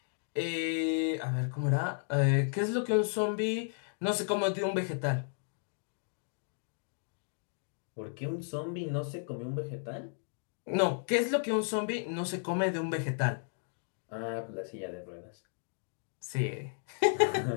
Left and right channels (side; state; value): right; silent; digital silence